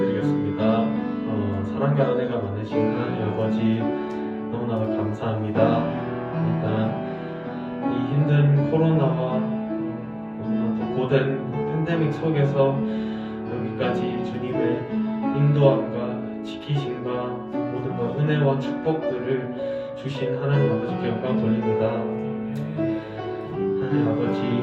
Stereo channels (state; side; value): identical; both; correlation 1.00